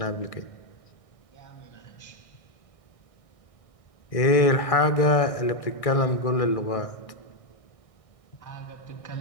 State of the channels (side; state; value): right; late; 1.6 ms